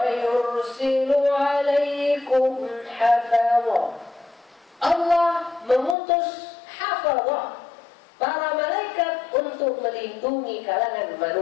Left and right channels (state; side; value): drops out; right; at 6.0 s